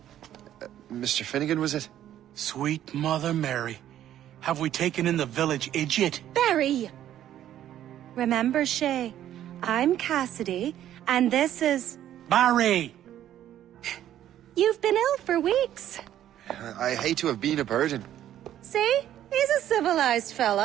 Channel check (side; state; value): left; quieter; 11.6 dB